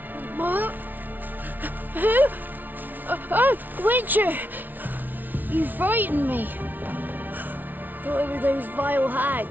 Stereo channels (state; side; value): late; left; 0.084 ms